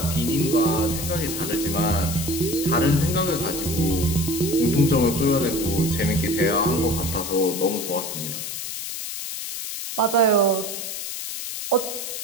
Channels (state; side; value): noise; left; hiss, 6 dB below the sound